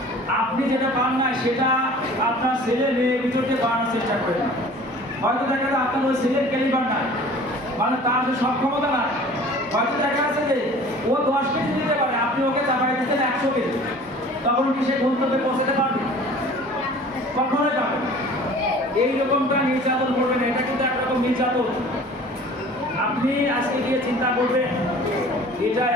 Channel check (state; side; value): normal; both; correlation 0.46